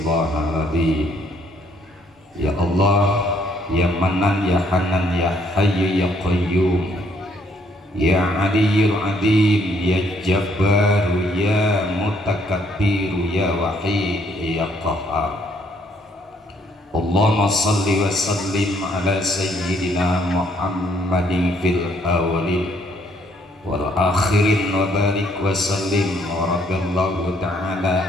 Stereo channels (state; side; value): normal; both; correlation 0.68